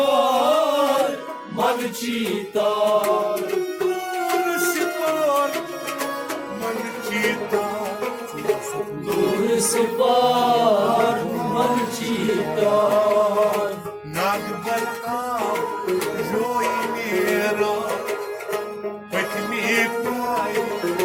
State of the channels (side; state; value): both; identical; correlation 1.00